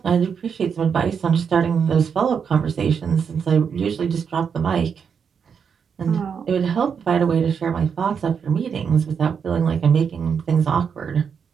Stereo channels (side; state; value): left; quieter; 6.8 dB